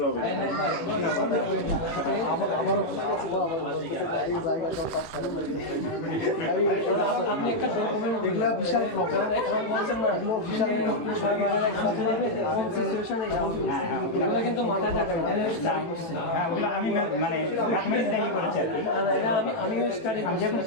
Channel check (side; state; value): right; late; 18 ms